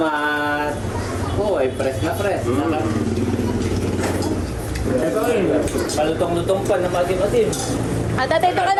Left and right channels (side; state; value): both; identical; correlation 1.00